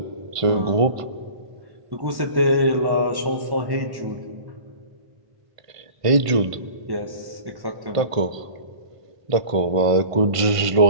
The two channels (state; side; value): late; left; 1.5 ms